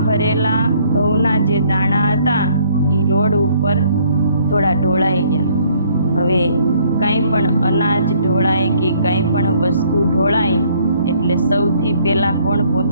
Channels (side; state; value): both; inverted; correlation -0.63